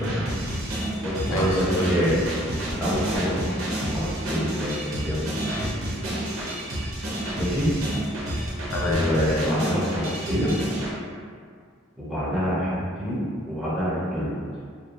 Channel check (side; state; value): both; normal; correlation 0.61